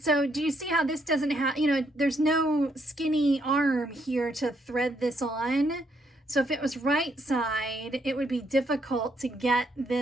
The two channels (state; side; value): normal; both; correlation 0.74